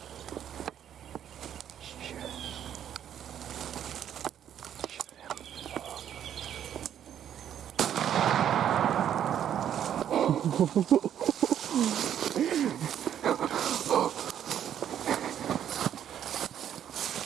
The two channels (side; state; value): left; quieter; 9.9 dB